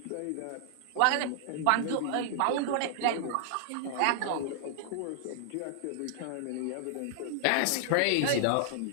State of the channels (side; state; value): both; different; correlation -0.01